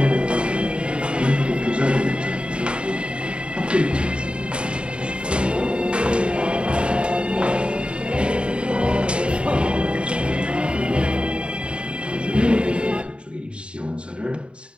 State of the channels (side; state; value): left; late; 0.055 ms